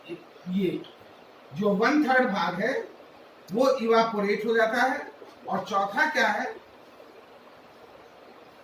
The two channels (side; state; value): both; identical; correlation 1.00